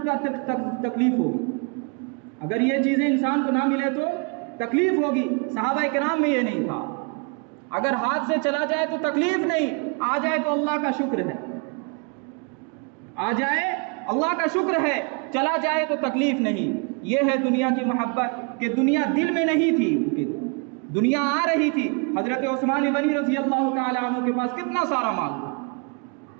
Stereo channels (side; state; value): left; quieter; 35.4 dB